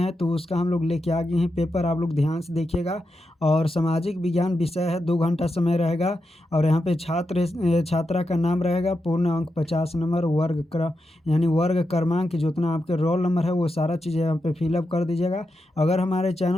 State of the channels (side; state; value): both; normal; correlation 0.87